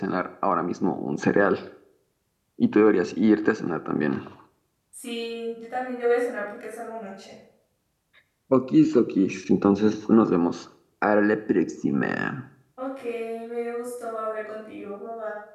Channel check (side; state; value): both; identical; correlation 1.00